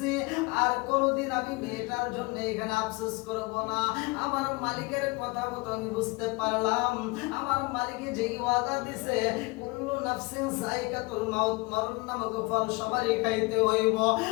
আর কোনোদিন আমি মেয়েটার জন্য এখানে আফসোস করব না। আমার মালিকের কথা মতো আমি বুঝতে পারলাম, আমার মালিকে যেই ওয়াদা দিছে কুল্লু নাফসিন যায়কাতুল মাউত, মরণ নামক ফল সবারই খাইতে হইব,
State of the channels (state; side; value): quieter; right; 25.8 dB